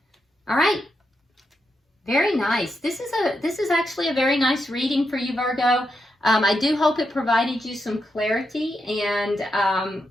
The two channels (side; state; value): both; normal; correlation 0.84